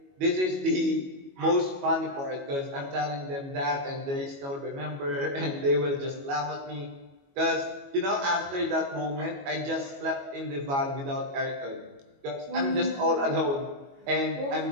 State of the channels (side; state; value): left; late; 22 ms